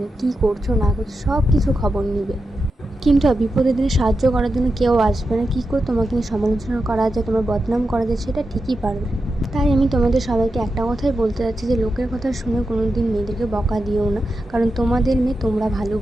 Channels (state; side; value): normal; both; correlation 0.89